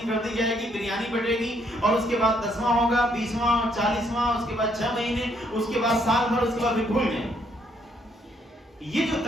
کر دی جائے گی، بریانی بٹے گی، اور اس کے بعد 10واں ہوگا، 20واں، 40 41 ماہ، اس کے بعد 6 مہینے، اس کے بعد سال بھر، اس کے بعد بھی بھول جائیں۔ یہ جو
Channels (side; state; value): both; normal; correlation 0.71